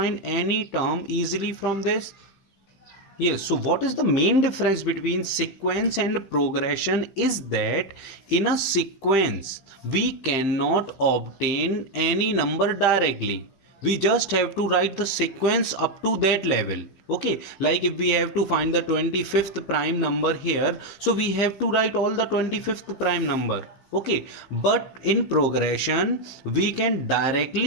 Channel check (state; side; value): late; right; 15 ms